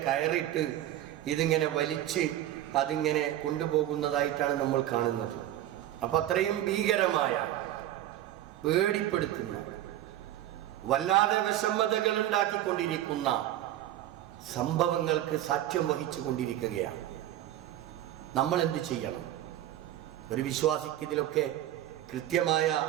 കയറിട്ട് ഇതിങ്ങനെ വലിച്ച് അതിങ്ങനെ കൊണ്ടുപോകുന്നതായിട്ടാണ് നമ്മൾ കാണുന്നത്. അപ്പം അത്രയും ഭീകരമായ, പേടിപ്പെടുത്തുന്ന, വല്ലാതെ വിഷമതകൾ ഉണ്ടാക്കിക്കൊണ്ടിരിക്കുന്ന സംഭവങ്ങൾക്ക് സാക്ഷ്യം വഹിച്ചു കൊണ്ടിരിക്കുകയാണ്. നമ്മൾ എന്ത് ചെയ്യണം? ഒരു വിശ്വാസിക്ക് ഇതിലൊക്കെ കൃത്യമായ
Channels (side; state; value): left; quieter; 13.0 dB